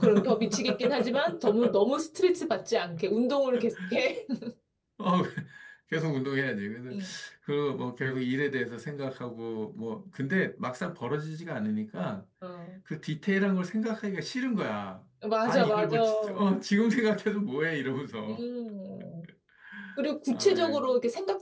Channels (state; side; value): identical; both; correlation 1.00